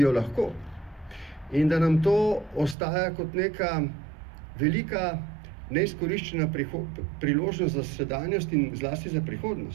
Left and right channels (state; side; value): drops out; left; at 2.8 s